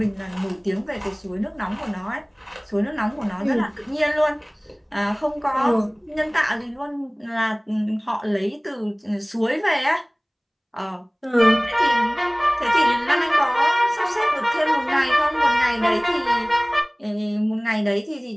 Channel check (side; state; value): both; identical; correlation 1.00